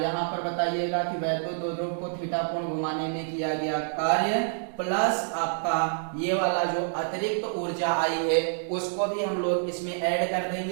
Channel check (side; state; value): left; silent; digital silence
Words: पर बताइएगा कि वैद्युत द्विध्रुव को थीटा कोण घुमाने में किया गया कार्य प्लस आपका ये वाला जो अतिरिक्त ऊर्जा आई है उसको भी हम लोग इसमें ऐड कर